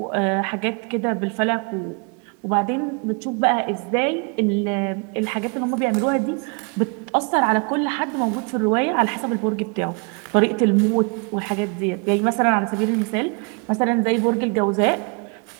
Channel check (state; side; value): quieter; left; 34.9 dB